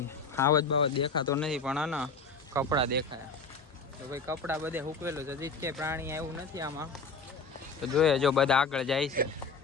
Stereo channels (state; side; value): quieter; right; 4.4 dB